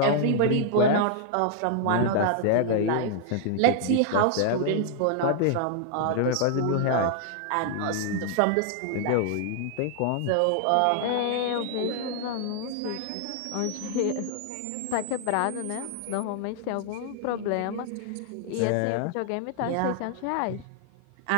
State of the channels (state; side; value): different; both; correlation 0.00